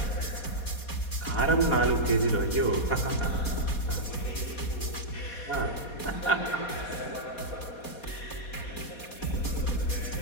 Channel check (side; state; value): right; late; 4.2 ms